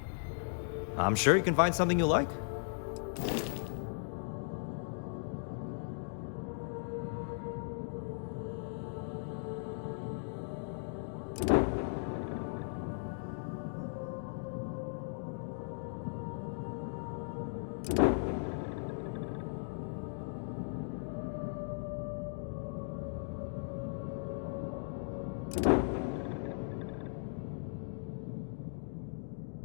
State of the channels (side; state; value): right; silent; digital silence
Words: I'm sure you can find something you like.